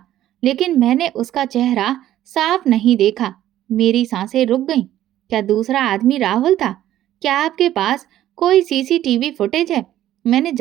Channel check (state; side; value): quieter; left; 12.9 dB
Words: लेकिन मैंने उसका चेहरा साफ नहीं देखा। मेरी सांसें रुक गईं। क्या दूसरा आदमी राहुल था? क्या आपके पास कोई सीसीटीवी फुटेज है? मैंने